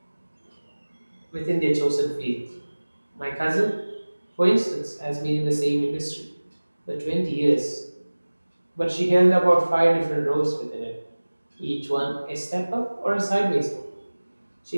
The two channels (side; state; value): both; inverted; correlation -1.00